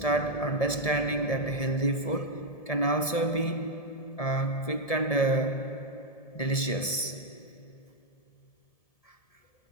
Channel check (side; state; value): right; late; 1.7 ms